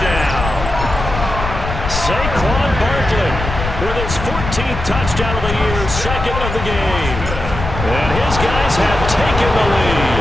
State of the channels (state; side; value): noise; left; rumble, 6 dB below the sound